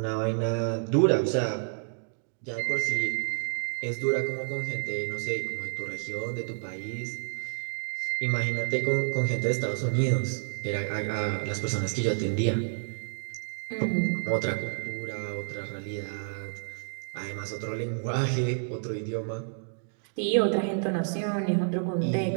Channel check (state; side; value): silent; left; digital silence